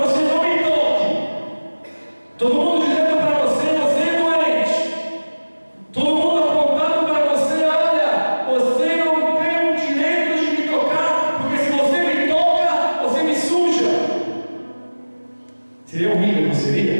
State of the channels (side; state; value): both; inverted; correlation -1.00